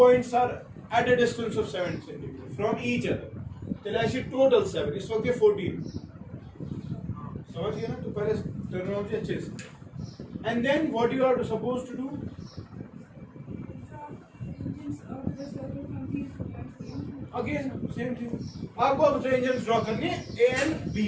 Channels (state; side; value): identical; both; correlation 1.00